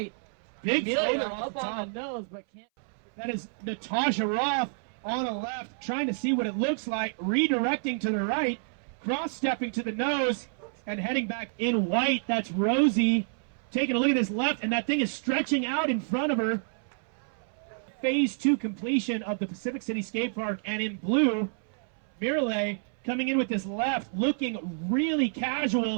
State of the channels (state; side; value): silent; left; 59 dB below the other